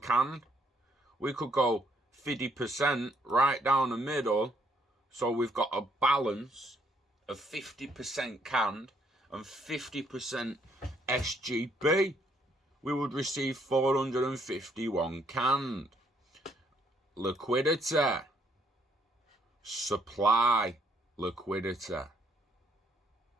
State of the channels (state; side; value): normal; both; correlation 0.69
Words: We could go 50% right down the middle. So we've got a balance of 50% canned and 50% SGB. We would receive 451 canned. Liquidity. Supply liquidity.